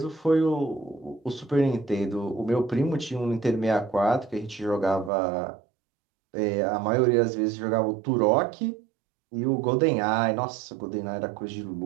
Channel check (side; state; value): left; drops out; at 5.1 s